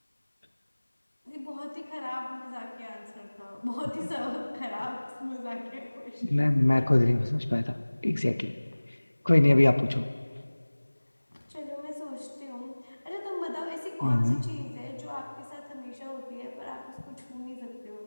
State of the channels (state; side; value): inverted; both; correlation -1.00